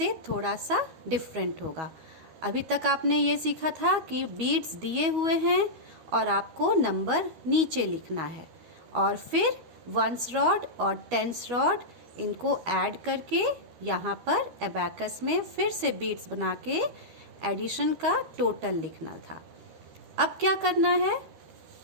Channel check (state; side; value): late; left; 12 ms